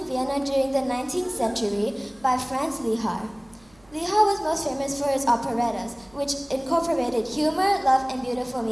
Vienna during the 19th century by Franz Lehar. Lehar was most famous for his operettas, which incorporated humor, love, and beautiful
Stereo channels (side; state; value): right; noise; hum, 30 dB below the sound